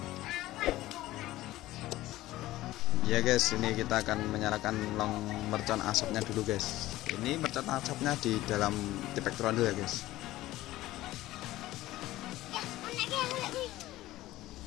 Ya guys, ini kita akan menyalakan long mercon asapnya dulu guys. Ini mercon asapnya di dalam tipek trondol ya guys.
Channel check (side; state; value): right; quieter; 16.4 dB